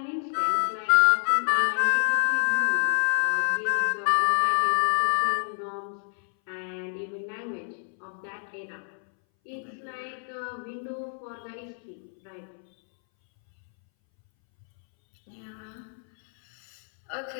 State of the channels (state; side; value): silent; right; 60 dB below the other